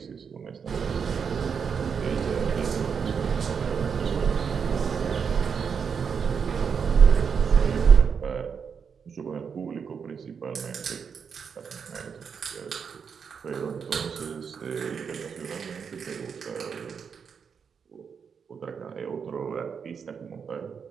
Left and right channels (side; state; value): left; quieter; 6.5 dB